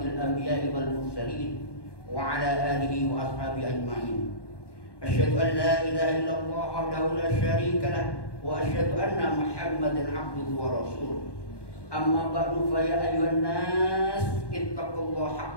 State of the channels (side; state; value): right; late; 1.1 ms